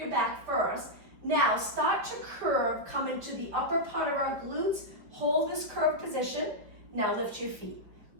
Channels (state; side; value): late; left; 5.1 ms